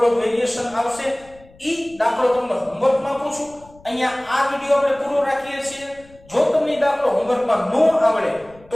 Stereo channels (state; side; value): noise; left; rumble, 26 dB below the sound